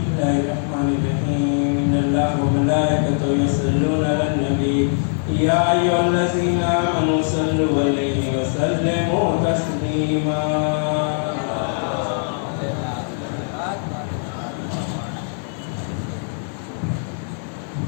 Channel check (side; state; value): right; silent; digital silence